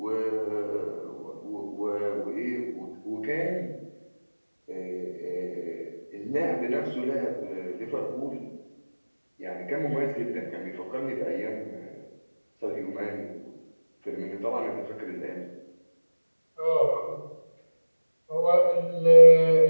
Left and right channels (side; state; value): both; inverted; correlation -1.00